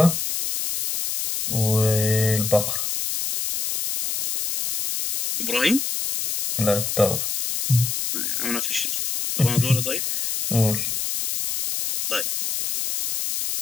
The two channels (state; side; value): noise; left; hiss, 2 dB below the sound